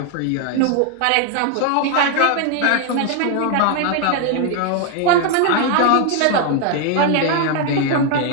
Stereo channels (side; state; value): both; different; correlation 0.00